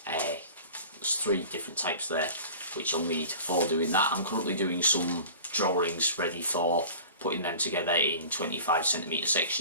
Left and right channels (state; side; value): inverted; both; correlation -0.40